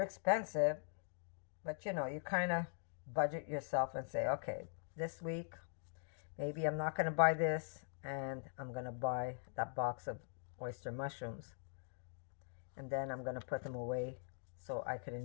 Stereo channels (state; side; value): silent; right; digital silence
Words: expensive, but you know, you kind of budget yourself and say, okay, this week, maybe I'm not going to buy this, and I'm going to buy that box of oyster mushrooms. And then I'm going to put them away so I could